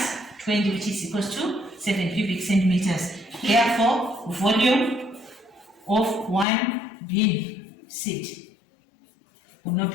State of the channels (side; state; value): right; drops out; at 6.5 s